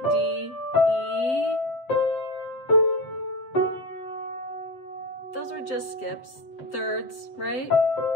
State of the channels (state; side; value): late; right; 7.7 ms